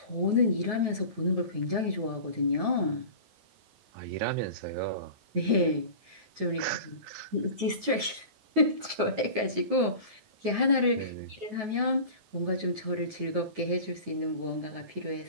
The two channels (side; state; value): left; late; 9.3 ms